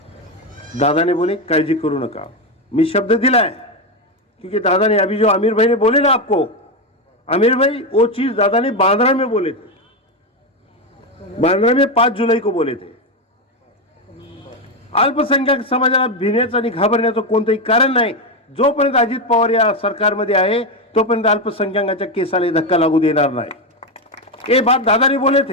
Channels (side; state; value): both; normal; correlation 0.10